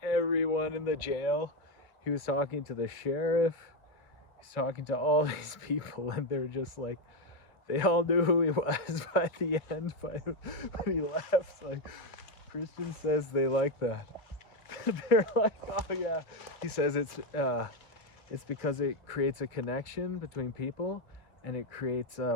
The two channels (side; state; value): right; late; 2.5 ms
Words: everyone in the jail. He was talking to the sheriff. He's talking to all these people, and they're just like, they all knew who he was by the end, when he left. Like, Christian says they like that. They're like, oh yeah. He says it's because it creates a connection between people, and it creates